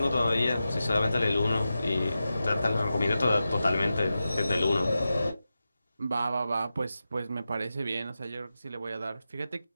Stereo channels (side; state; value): both; inverted; correlation -0.92